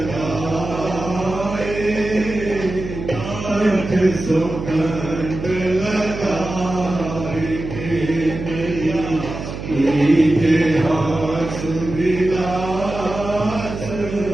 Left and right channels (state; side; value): noise; right; hum, 8 dB below the sound